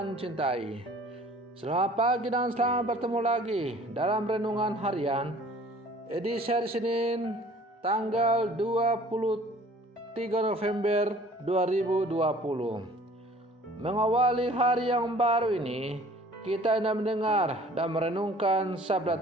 cintai, selamat pagi dan selamat bertemu lagi dalam Renungan Harian edisi hari Senin tanggal 23 November 2020. Mengawali hari yang baru ini, kita hendak mendengar dan merenungkan sabda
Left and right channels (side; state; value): both; normal; correlation 0.51